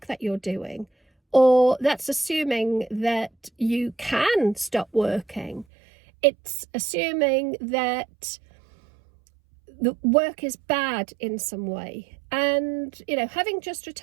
that you're doing, or that's assuming that you can stop working. It's assuming that the work is bad in some way. And, having just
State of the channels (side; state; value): left; drops out; at 5.7 s